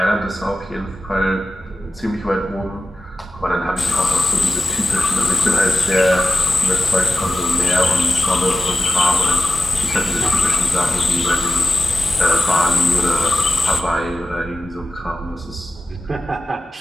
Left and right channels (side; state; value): both; normal; correlation 0.93